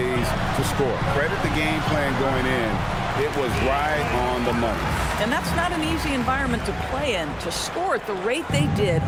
to score. Credit the game plan going in. It was right on the money. And that's not an easy environment to play in. To score at the rate they did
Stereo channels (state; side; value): identical; both; correlation 1.00